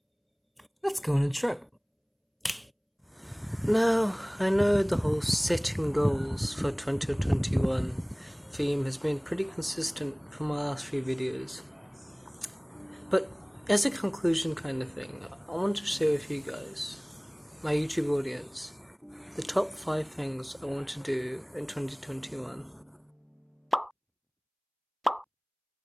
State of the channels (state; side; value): identical; both; correlation 1.00